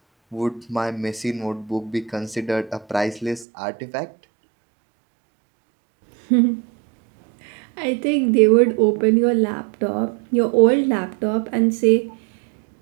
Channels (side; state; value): left; drops out; at 3.5 s